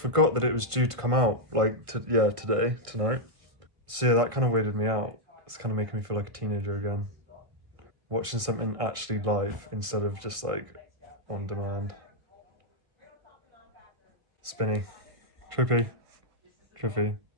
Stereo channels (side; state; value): left; late; 1.5 ms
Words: that it was due to come out like tonight. So yeah, that kind of weirded me out. It's kind of making me feel like a teenager again. Watching something actually live instead of just like on demand. Spinny. Trippy.